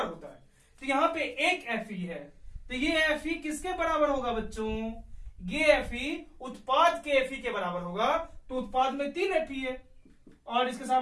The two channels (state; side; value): identical; both; correlation 1.00